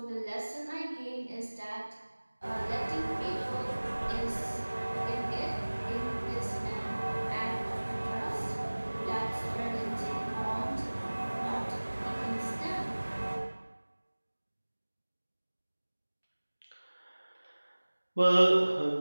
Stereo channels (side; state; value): both; inverted; correlation -1.00